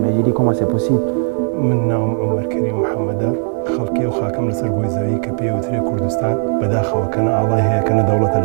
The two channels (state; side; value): silent; left; 56 dB below the other